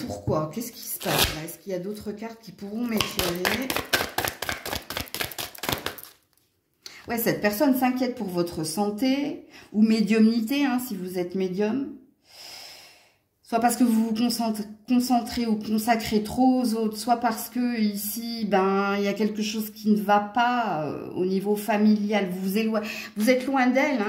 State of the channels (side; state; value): both; identical; correlation 1.00